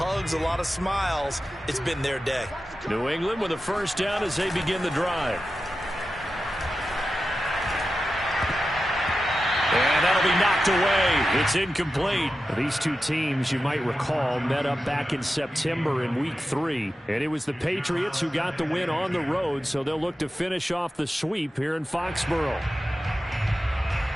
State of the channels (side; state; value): both; normal; correlation 0.92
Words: a lot of smiles. It's been their day. New England with a first down as they begin the drive. knocked away. It's incomplete. These two teams, you might recall, met up back in September in Week 3. And it was the Patriots who got the win on the road, so they'll look to finish off the sweep here in Foxborough.